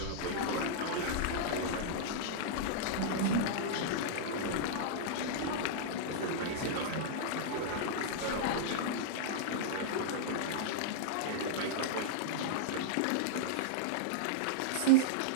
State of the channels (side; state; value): both; different; correlation -0.02